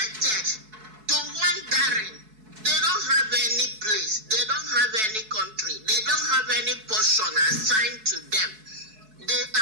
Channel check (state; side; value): late; left; 4.6 ms